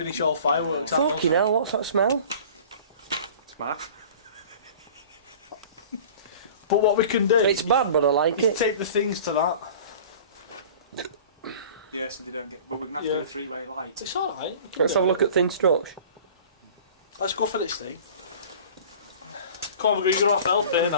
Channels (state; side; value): inverted; both; correlation -0.43